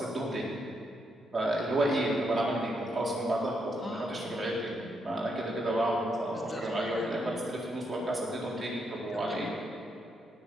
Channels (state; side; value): normal; both; correlation 0.79